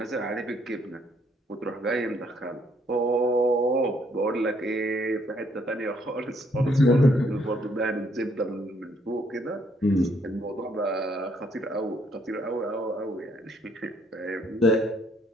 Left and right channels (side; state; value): both; normal; correlation 0.69